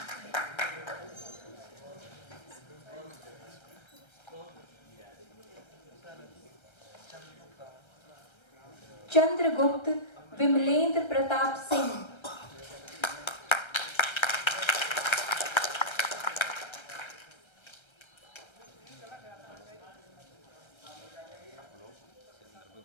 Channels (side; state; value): right; late; 1.3 ms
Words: चंद्रगुप्त विमलेंद्र प्रताप सिंह